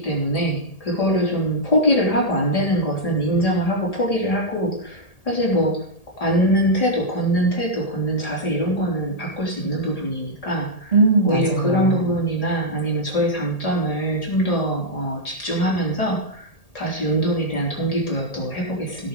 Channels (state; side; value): late; right; 1.8 ms